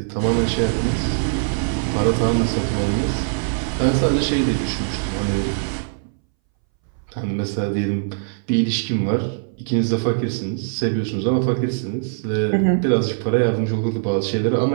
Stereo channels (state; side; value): silent; left; 62 dB below the other